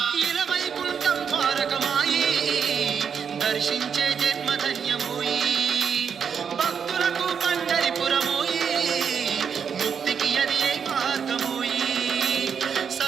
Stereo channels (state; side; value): quieter; left; 7.0 dB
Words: ఇలవైకుంఠం ద్వారకమాయి దర్శించే జన్మధన్యమోయి భక్తులకు పండరిపురమోయి ముక్తికి అది ఏ మార్గమోయి